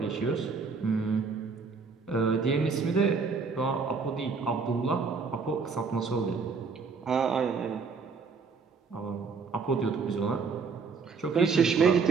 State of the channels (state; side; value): quieter; left; 5.0 dB